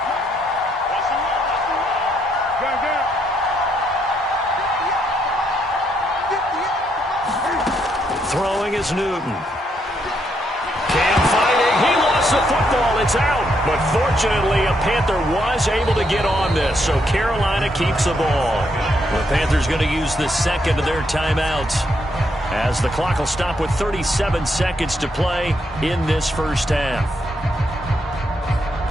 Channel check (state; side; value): normal; both; correlation 0.76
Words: Throwing is Newton. Cam fighting. He lost the football. It's out. But fortunately, a Panther was able to get on this. So Carolina keeps the ball. The Panthers going to use the second of their timeouts as the clock will stop with 37 seconds to play in this first half.